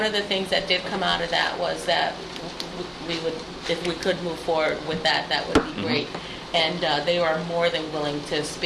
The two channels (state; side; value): identical; both; correlation 1.00